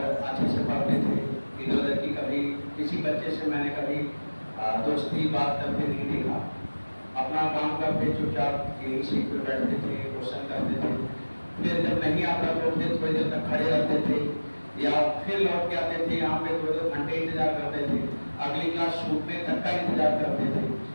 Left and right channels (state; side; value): inverted; both; correlation -1.00